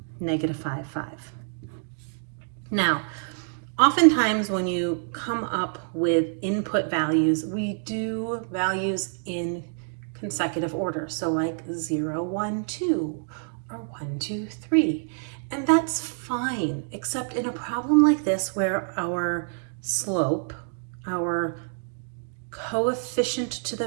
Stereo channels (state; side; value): silent; left; digital silence